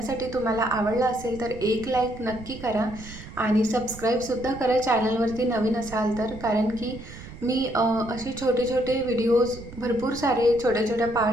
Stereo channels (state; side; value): noise; right; rumble, 15 dB below the sound